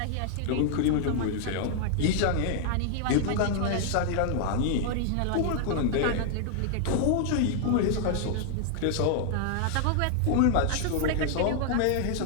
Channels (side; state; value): both; different; correlation 0.00